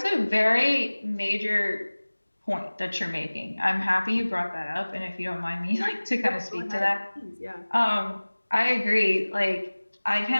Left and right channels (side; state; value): both; inverted; correlation -1.00